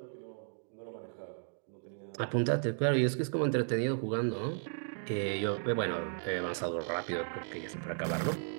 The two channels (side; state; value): left; silent; 55 dB below the other